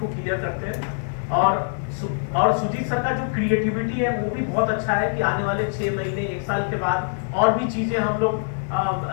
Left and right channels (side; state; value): right; silent; digital silence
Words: क्लियर करते हैं। और सुजीत सर का जो क्रिएटिविटी है वो भी बहुत अच्छा है कि आने वाले 6 महीने 1 साल के बाद और भी चीजें हम लोग